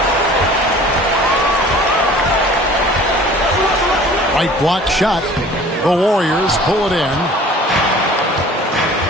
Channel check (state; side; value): normal; both; correlation 0.47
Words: Right block shot. The Warriors pull it in.